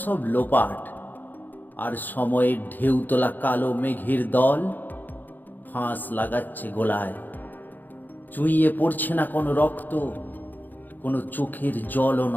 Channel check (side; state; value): right; late; 0.087 ms